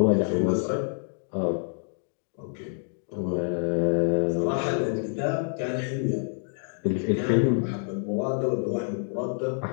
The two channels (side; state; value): right; silent; 60 dB below the other